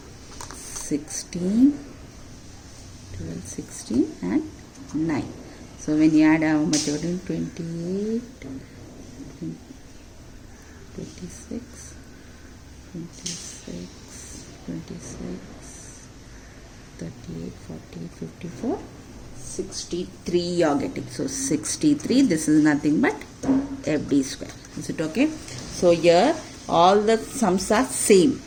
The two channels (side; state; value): both; identical; correlation 1.00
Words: 16, 12, 16 and 9. So when you add how much? 28, 26, 26, 26, 38, 40, 54, 63 you are getting. So 63, this is nothing but FD square. Is it okay? So here all the sums are same.